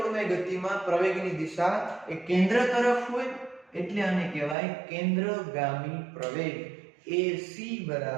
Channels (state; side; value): drops out; left; at 4.5 s